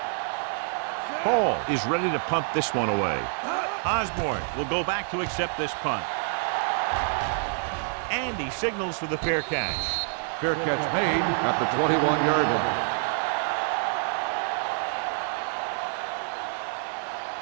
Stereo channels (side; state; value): left; silent; 56 dB below the other